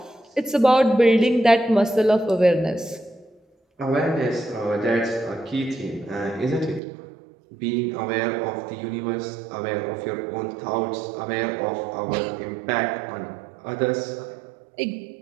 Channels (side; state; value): left; drops out; at 6.8 s